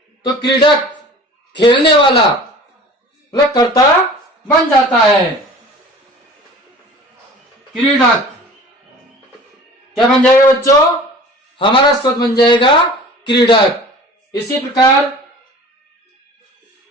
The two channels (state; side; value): normal; both; correlation 0.43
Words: तो क्रीडक, खेलने वाला, मतलब कर्ता बन जाता है क्रीडक। क्या बन जाएगा बच्चों, हमारा शब्द बन जाएगा क्रीडक। इसी प्रकार